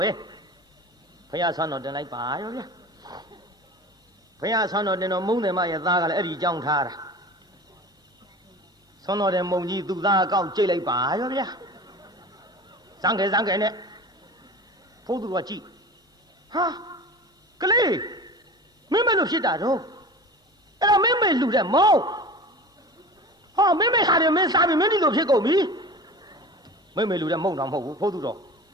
ဲဘုရားဆွမ်းတော်တင်လိုက်ပါရောဗျာဘုရားဆွမ်းတော်တင်တော်မုံတယ်မရဲ့သားကလည်းအဲ့ဒီကြောင်းထားတာဆွမ်းတော်တဲ့မုံကြီးသူ့သားအကောက်ကြိတ်လိုက်ပါရောဗျာစမ်းခဲနဲ့ဘုသူတော်ကကြည့်ဟာကလေးမင်းမလို့ဖြစ်တာတော့အဲ့တော့မင်းမေလူတဲ့မောင်းဟ哦，妹妹啥的没啥的，没你都撇狗皮。妹妹留在梦上跑步跑多少？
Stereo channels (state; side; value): normal; both; correlation 0.36